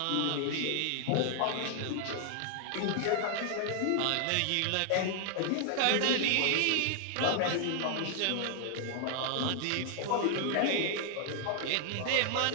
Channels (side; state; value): both; different; correlation 0.00